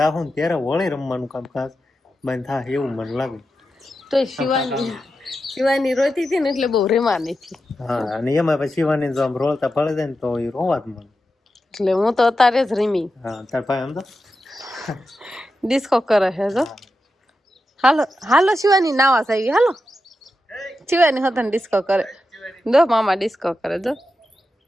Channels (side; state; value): both; normal; correlation 0.89